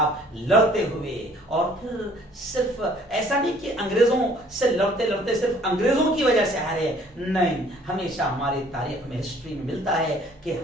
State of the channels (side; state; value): both; normal; correlation 0.57